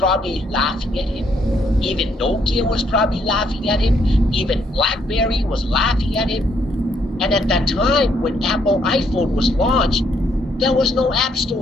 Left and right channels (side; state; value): both; normal; correlation 0.71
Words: laughing at him. Even Nokia was probably laughing at him. Even BlackBerry was laughing at him. And at that time, when Apple iPhone was launched, there was no app